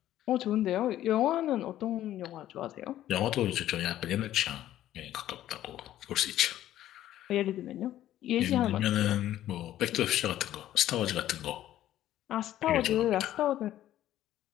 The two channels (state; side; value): quieter; right; 12.9 dB